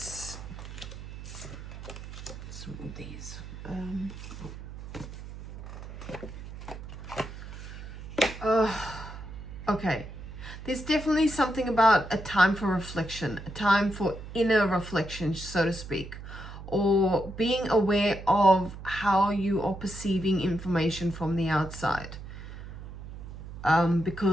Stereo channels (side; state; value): right; noise; hum, 12 dB below the sound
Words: move these. Okay, there's definitely something about a time for reflection, a time for inner reflection, so to speak, or being aware of how you are perceiving information from the outside.